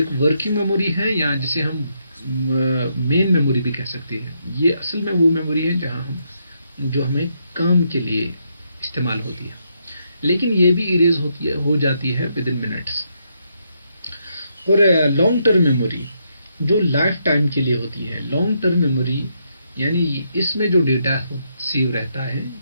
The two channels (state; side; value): inverted; both; correlation -0.78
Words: वर्किंग मेमोरी है, या जिसे हम मेन मेमोरी भी कह सकते हैं, ये असल में वो मेमोरी है जहां हम जो हमें काम के लिए इस्तेमाल होती है, लेकिन ये भी इरेज होती है, हो जाती है विद इन मिनट्स। और लॉन्ग टर्म मेमोरी जो लाइफ टाइम के लिए होती है। लॉन्ग टर्म मेमोरी यानी इसमें जो डेटा सेव रहता है